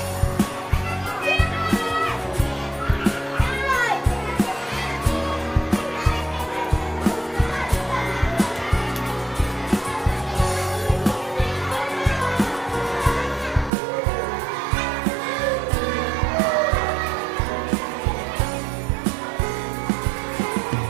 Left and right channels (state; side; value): drops out; left; at 13.7 s